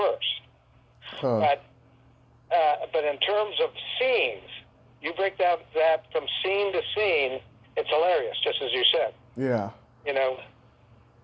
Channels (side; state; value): both; identical; correlation 1.00